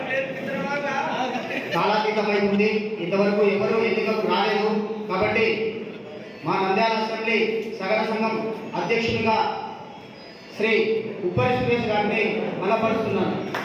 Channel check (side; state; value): both; identical; correlation 1.00